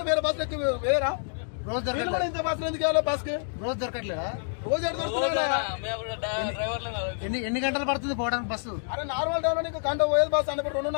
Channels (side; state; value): right; silent; digital silence